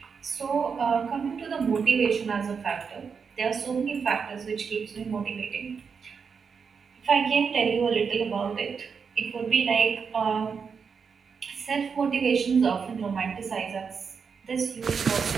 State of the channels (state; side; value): quieter; left; 5.9 dB